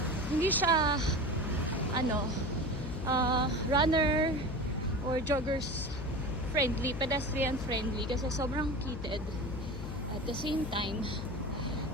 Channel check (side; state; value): left; noise; hum, 7 dB below the sound